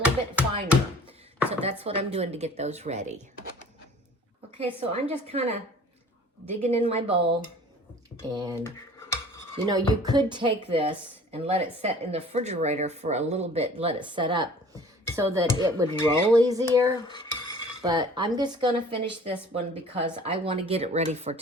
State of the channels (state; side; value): normal; both; correlation 0.48